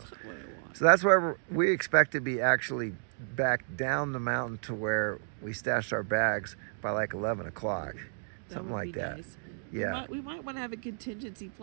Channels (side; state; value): left; silent; digital silence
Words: not what I want. So that's why we expect to be actually back down the mountain to where we stashed our bags by like 11 o'clock. Something like that. Nice. Yeah. We might want to have a contingency